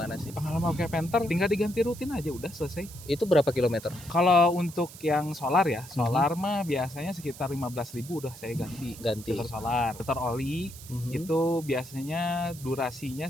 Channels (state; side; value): noise; right; hiss, 16 dB below the sound